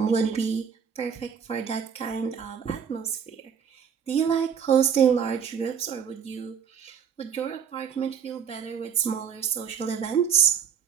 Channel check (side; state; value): left; quieter; 7.4 dB